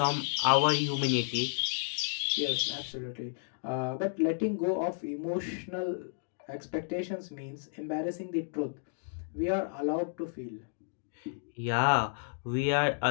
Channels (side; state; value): right; silent; digital silence